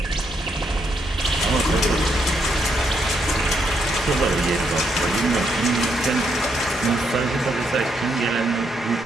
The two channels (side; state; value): both; normal; correlation 0.76